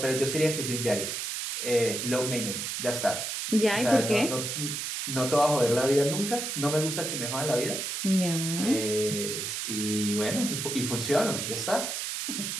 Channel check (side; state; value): right; noise; hiss, 3 dB below the sound